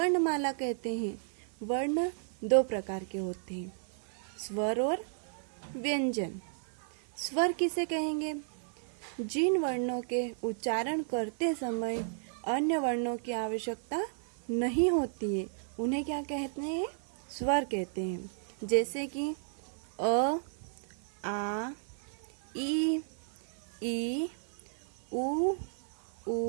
कहते हैं। वर्ण दो प्रकार के होते हैं, स्वर और व्यंजन। स्वर किसे कहेंगे? जिन वर्णों के उच्चारण करते समय अन्य वर्णों की आवश्यकता नहीं होती है, उन्हें क्या कहते हैं? स्वर कहते हैं। जैसे कि अ, आ, ई, उ,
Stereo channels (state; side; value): silent; left; 55 dB below the other